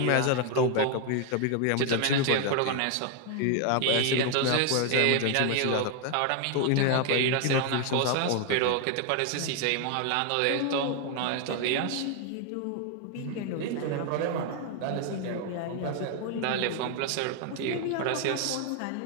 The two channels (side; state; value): both; different; correlation 0.01